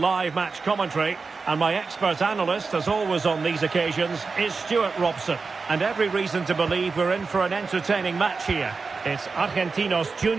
match commentary, and my expert analyst, as always on these occasions, is Stuart Robson. And every reason to believe we're in for an entertaining match here. It's Argentinos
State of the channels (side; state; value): left; quieter; 4.5 dB